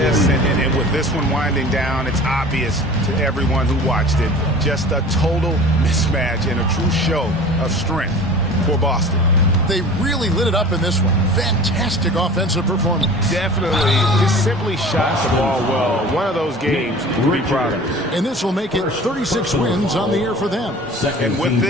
and with this one winding down, it's obvious to everyone who watched it. Just a total mismatch and a true show of strength for Boston. They really lit it up in this one. Fantastic offensive performance. Definitely. Just simply shot the ball well. One of those games to be proud of. And this will make it 36 wins on the year for them. And with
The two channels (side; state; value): both; normal; correlation 0.41